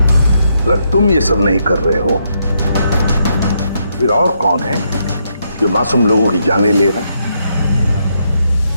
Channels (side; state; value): both; inverted; correlation -0.77